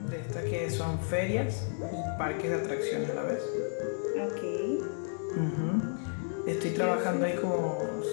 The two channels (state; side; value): silent; right; digital silence